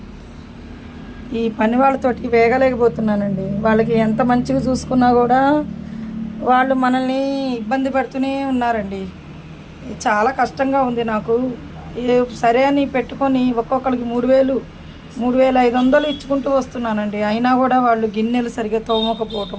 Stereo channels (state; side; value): identical; both; correlation 1.00